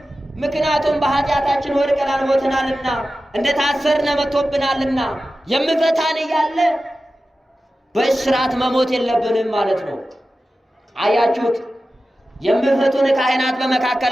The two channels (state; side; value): normal; both; correlation 0.94